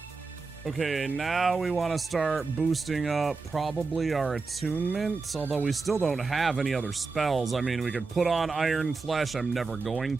Okay, now we want to start boosting up probably our attunements, although we still don't have any other spells. I mean, we could put on Iron Flesh. I'm never going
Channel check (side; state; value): left; quieter; 4.2 dB